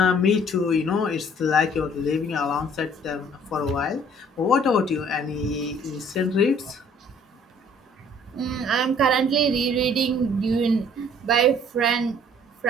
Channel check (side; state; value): both; normal; correlation 0.56